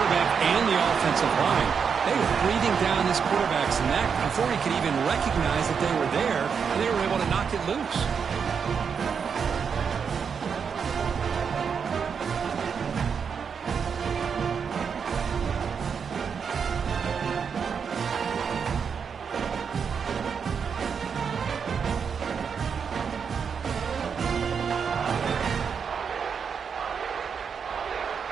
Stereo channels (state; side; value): quieter; left; 6.5 dB